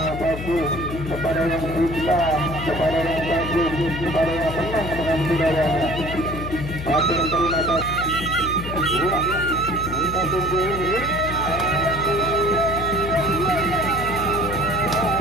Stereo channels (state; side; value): noise; left; hum, 8 dB below the sound